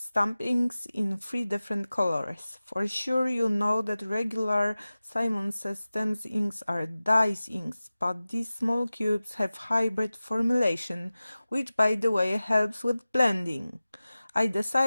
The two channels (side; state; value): both; inverted; correlation -0.97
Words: inks in 3 different colors. For sure you know that regular Simon Says stamp inks are dyes inks, but these small cubes have hybrid formulation, which by the way helps with blending. I